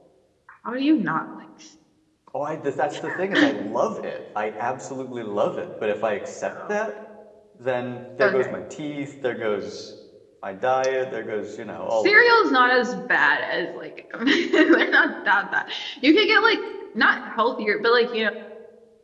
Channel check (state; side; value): identical; both; correlation 1.00